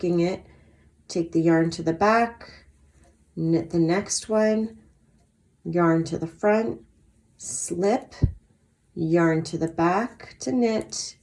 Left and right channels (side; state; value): both; identical; correlation 1.00